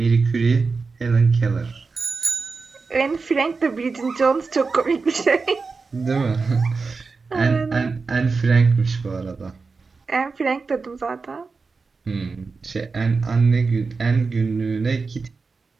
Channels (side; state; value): left; quieter; 4.4 dB